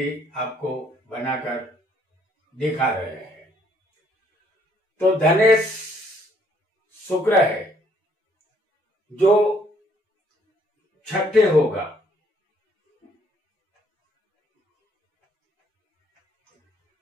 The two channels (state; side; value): normal; both; correlation 0.65